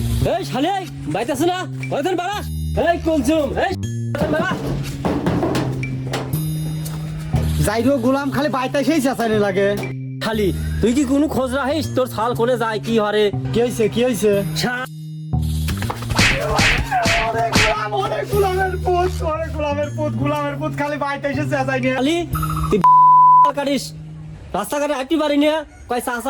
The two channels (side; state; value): both; identical; correlation 1.00